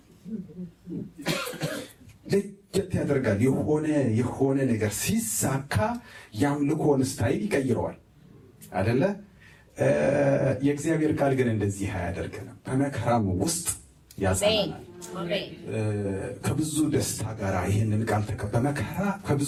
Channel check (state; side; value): identical; both; correlation 1.00